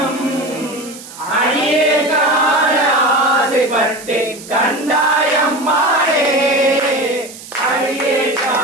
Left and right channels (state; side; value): noise; right; hiss, 16 dB below the sound